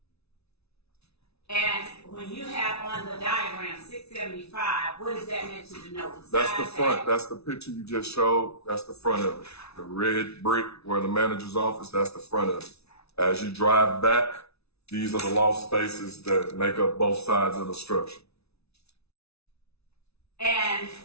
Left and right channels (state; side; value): late; right; 0.80 ms